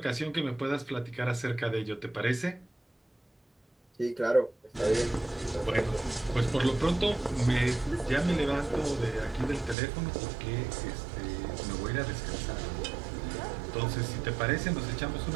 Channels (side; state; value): left; drops out; at 9.8 s